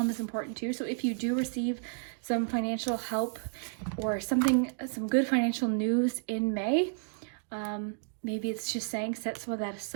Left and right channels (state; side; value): silent; left; 57 dB below the other